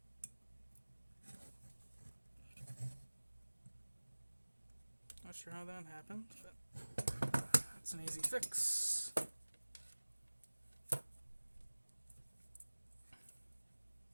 Not sure how that happened, but that's an easy fix.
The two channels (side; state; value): both; inverted; correlation -1.00